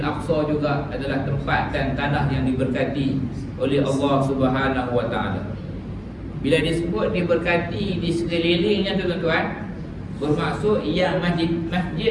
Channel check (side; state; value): both; identical; correlation 1.00